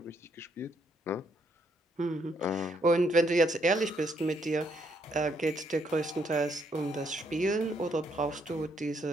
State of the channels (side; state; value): both; normal; correlation 0.73